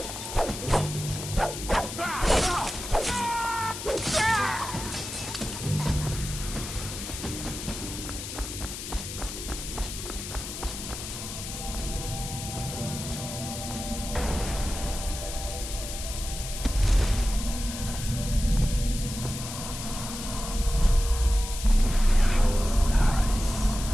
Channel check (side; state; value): left; noise; hiss, 8 dB below the sound